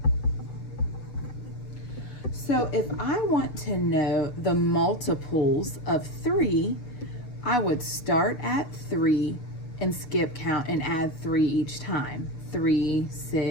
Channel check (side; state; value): right; late; 6.9 ms